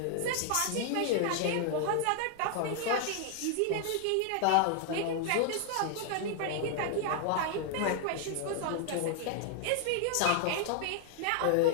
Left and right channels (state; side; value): different; both; correlation 0.00